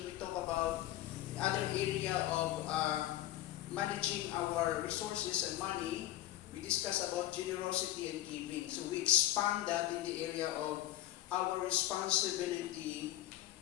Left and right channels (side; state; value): right; quieter; 14.5 dB